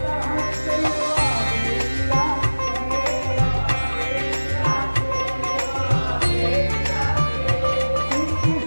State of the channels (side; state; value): both; inverted; correlation -1.00